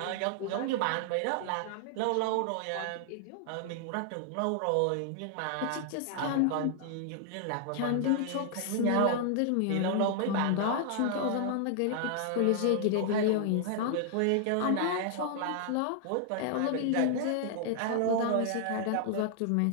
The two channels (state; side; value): different; both; correlation 0.00